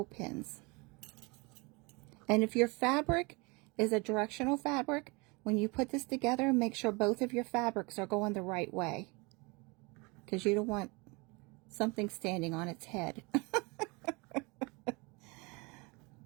pins. And if your fabric is a directional fabric, when you put this together, make sure both of your fabrics are going the right way, because you don't want something standing on its head.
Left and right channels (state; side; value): quieter; left; 27.7 dB